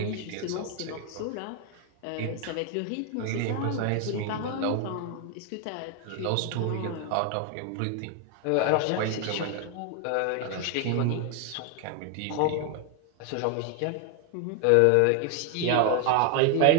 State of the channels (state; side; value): different; both; correlation 0.01